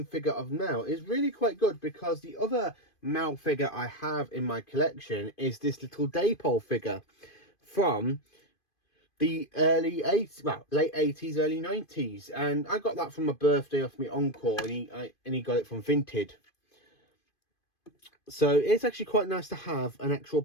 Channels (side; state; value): right; late; 2.5 ms